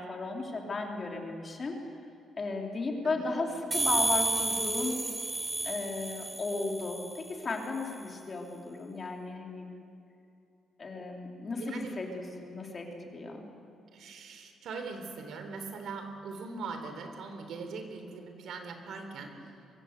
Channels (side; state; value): both; normal; correlation 0.88